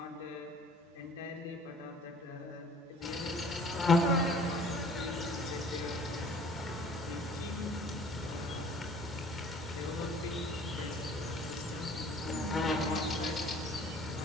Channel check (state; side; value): normal; both; correlation 0.51